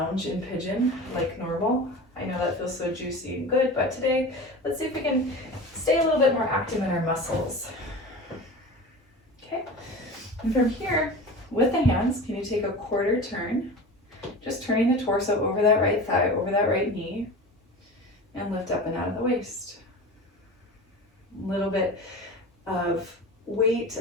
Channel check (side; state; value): both; normal; correlation 0.33